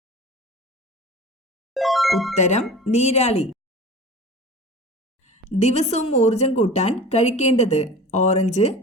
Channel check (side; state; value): both; normal; correlation 0.37